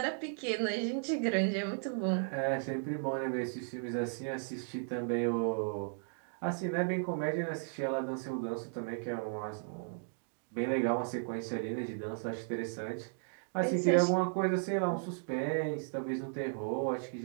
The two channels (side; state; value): left; silent; digital silence